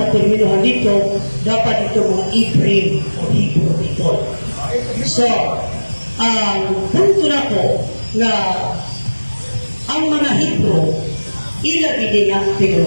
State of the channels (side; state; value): both; inverted; correlation -1.00